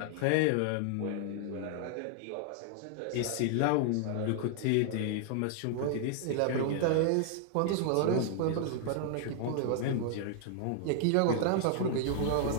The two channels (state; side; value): different; both; correlation 0.00